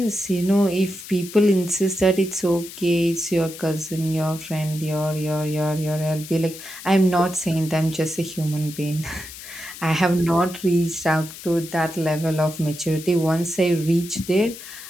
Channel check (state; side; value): noise; left; hiss, 14 dB below the sound